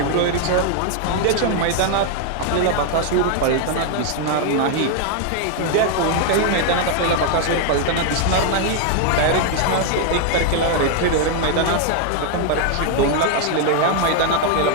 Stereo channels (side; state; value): both; different; correlation 0.00